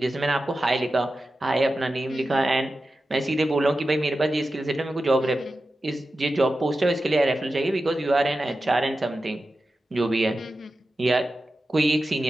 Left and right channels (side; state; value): both; normal; correlation 0.93